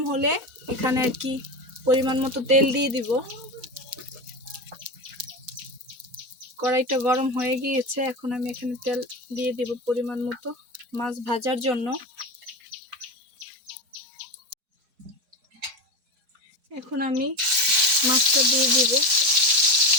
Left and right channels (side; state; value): left; late; 4.5 ms